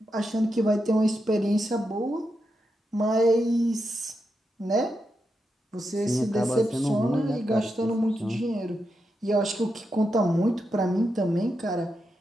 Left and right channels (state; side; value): normal; both; correlation 0.86